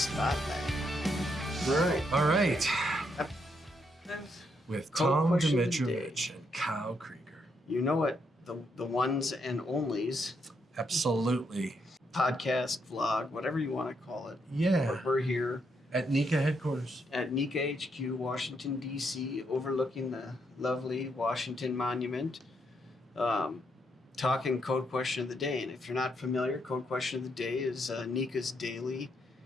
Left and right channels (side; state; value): both; normal; correlation 0.77